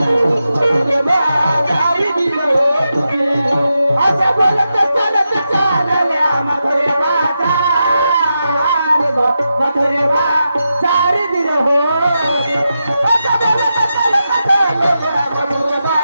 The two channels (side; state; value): both; inverted; correlation -0.88